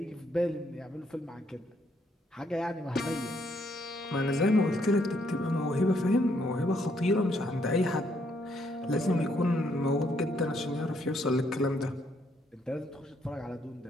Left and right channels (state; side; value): normal; both; correlation 0.72